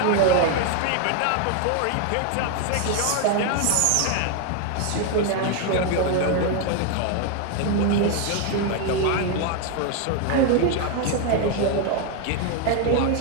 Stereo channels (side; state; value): both; different; correlation 0.01